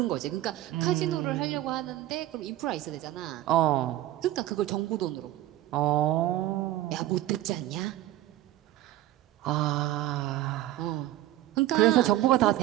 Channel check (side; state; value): left; quieter; 14.6 dB